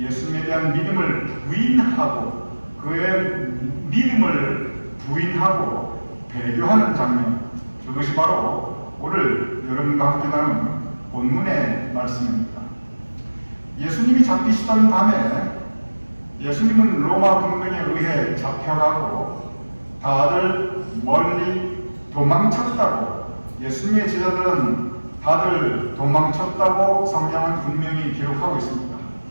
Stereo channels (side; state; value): both; inverted; correlation -1.00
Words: 대한 믿음을 부인하고 그의 믿음을 부인하고 배교하는 장면, 그것이 바로 오늘 여러분과 함께 나눈 본문의 말씀입니다. 예수님이 잡히시던 밤에 예수님은 로마 군병에 의해 잡혀가고 다들 멀리 도망쳤다고, 예수님의 제자들은 다들 도망쳤다고 성경은 분명히 기록하고 있습니다.